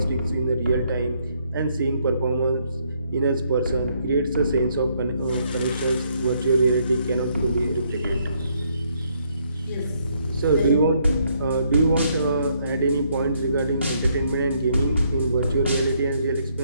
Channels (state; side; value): inverted; both; correlation -0.71